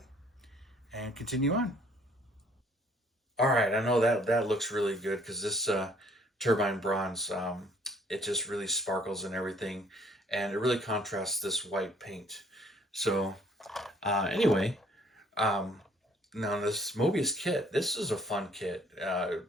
and continue on. All right, I know that looks really good, because this turbine bronze, it just really sparkles and everything, and it really contrasts this white paint. So anyway, now this Moebius kit, this is a fun kit. It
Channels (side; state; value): both; normal; correlation 0.60